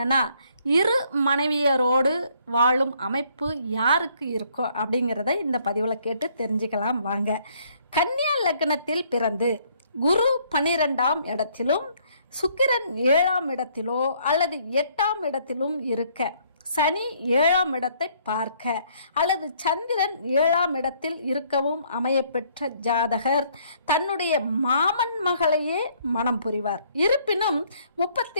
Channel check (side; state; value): both; inverted; correlation -0.65